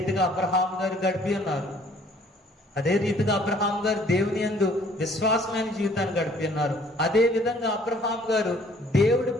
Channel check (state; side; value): normal; both; correlation 0.58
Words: అబ్రహాం గారు గడిపి ఉన్నారు. అదే రీతిగా అబ్రహాం గారు దేవుని యందు విశ్వాసమైన జీవితాన్ని గడిపి ఉన్నారు. అదే విధంగా అబ్రహాం గారు దేవుడి